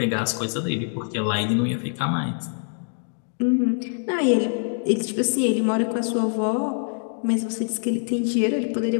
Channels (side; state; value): right; silent; 59 dB below the other